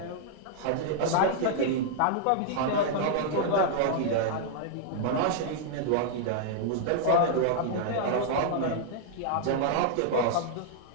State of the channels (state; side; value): different; both; correlation -0.01